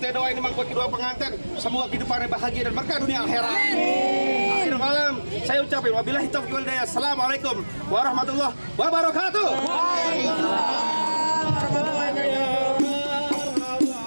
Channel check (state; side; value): inverted; both; correlation -1.00